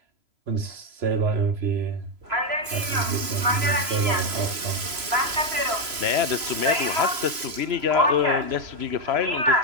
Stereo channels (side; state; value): left; late; 3.0 ms